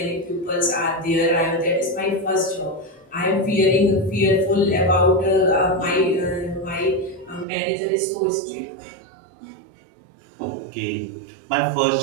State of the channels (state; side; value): drops out; left; at 7.5 s